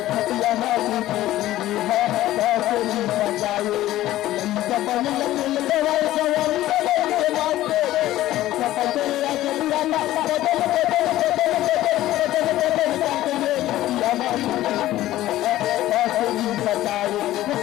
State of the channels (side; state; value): right; quieter; 14.8 dB